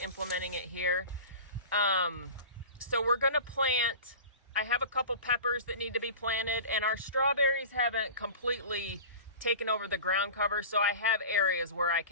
implementing it here. So we're going to plant, I have a couple peppers that need to be planted, and our strawberries haven't completely taken over the ground cover, so I have areas where I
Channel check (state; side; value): inverted; both; correlation -0.35